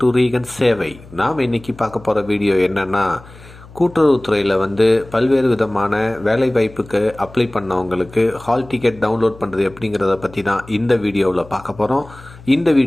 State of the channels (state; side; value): noise; left; hum, 20 dB below the sound